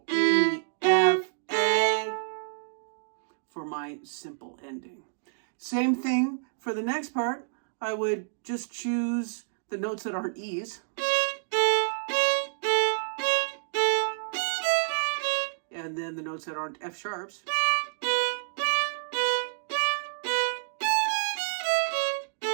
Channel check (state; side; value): silent; left; digital silence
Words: E, F, A for my simple ending. Same thing for the next part. I would just choose the notes that aren't E's. And then the notes that aren't F sharps.